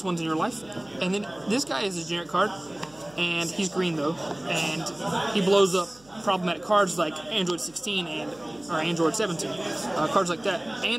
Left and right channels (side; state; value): right; noise; hum, 27 dB below the sound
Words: one's in your life. And then this guy is a generic card, and he's green though, and he blows up problematic cards like Android 16 or Android 17, cards like that.